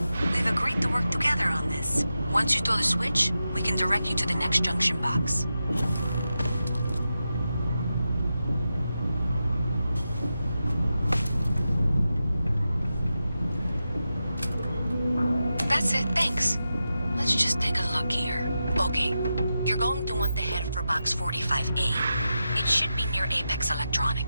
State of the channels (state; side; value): inverted; both; correlation -0.90